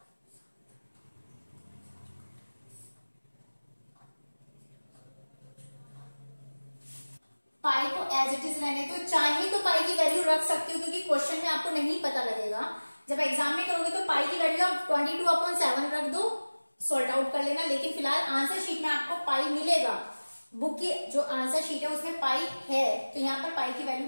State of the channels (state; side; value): inverted; both; correlation -1.00